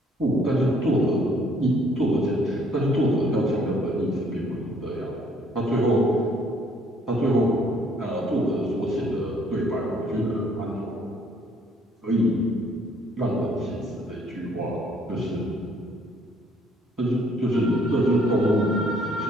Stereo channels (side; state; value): both; normal; correlation 0.63